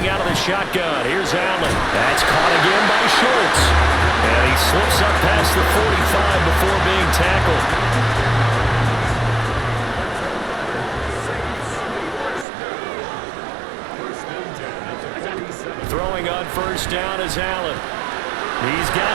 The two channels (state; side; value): drops out; left; at 12.5 s